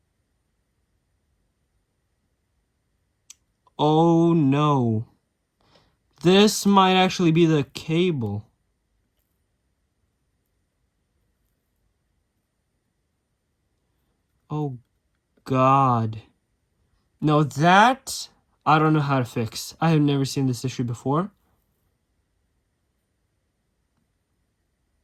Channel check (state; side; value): identical; both; correlation 1.00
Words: Oh no. This might actually be the cable. Oh god. No, that I don't know how to fix. I have never seen this issue before.